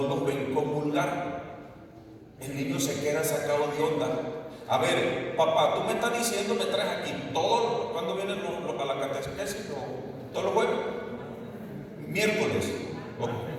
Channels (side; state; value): both; identical; correlation 1.00